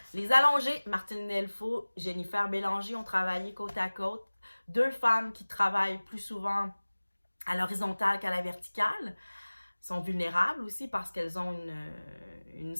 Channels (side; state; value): both; inverted; correlation -1.00